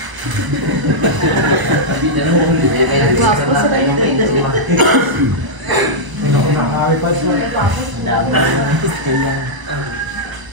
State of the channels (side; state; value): left; late; 1.0 ms